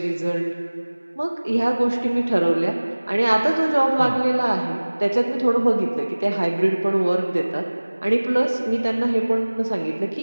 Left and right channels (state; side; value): inverted; both; correlation -1.00